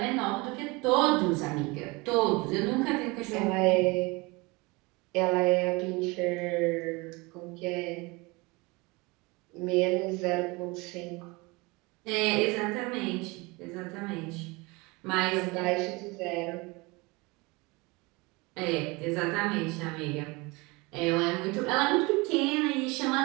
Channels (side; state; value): left; quieter; 25.3 dB